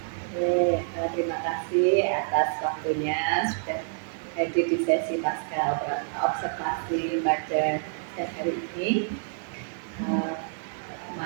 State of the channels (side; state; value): left; silent; digital silence